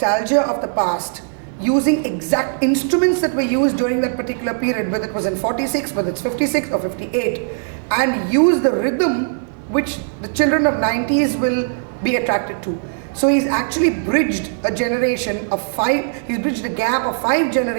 of the past, using exact instruments that were used during that particular period, whether it was in 46, whether it's 56 or 58, and use the rhythm which the children of 90s will be attracted to. So he's actually bridged a generation of he's bridged a gap of 5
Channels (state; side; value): silent; left; digital silence